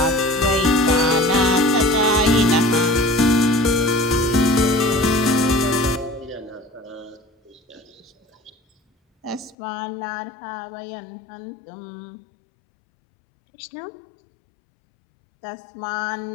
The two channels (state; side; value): drops out; right; at 9.6 s